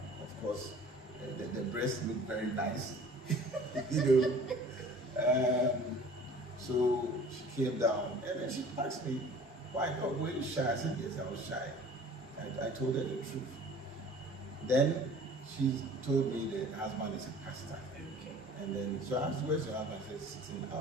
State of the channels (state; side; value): normal; both; correlation 0.47